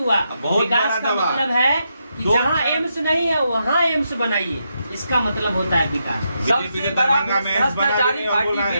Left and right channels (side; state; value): both; inverted; correlation -0.82